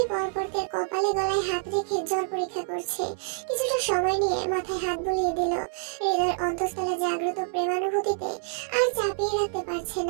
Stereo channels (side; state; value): left; silent; digital silence